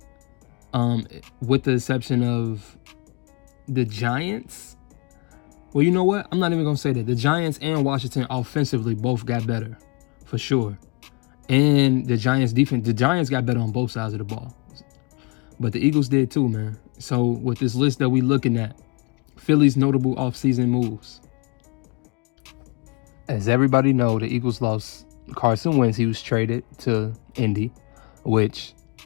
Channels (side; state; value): right; quieter; 29.8 dB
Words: with the exception of the Giants. Well, you know what? I'm not even going to say that. The Giants and Washington offensively both got better, for sure. And the Giants defense, the Giants got better on both sides of the ball. But the Eagles did too, man. So with this list that we looking at, Philly's notable offseason moves. As everybody know, the Eagles lost Carson Wentz. He was traded to Indy, which